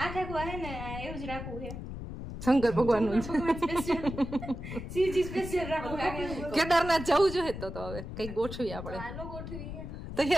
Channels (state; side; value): noise; left; rumble, 8 dB below the sound